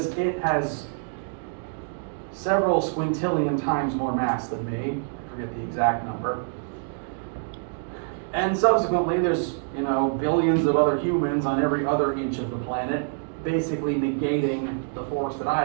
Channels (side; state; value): left; silent; digital silence